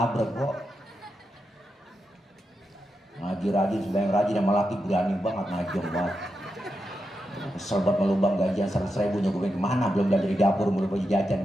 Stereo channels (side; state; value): both; normal; correlation 0.87